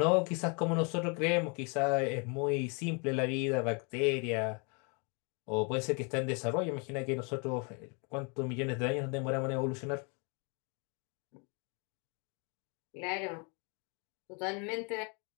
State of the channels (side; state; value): right; quieter; 34.6 dB